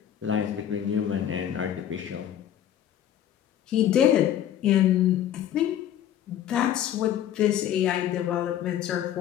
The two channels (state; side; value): quieter; right; 10.7 dB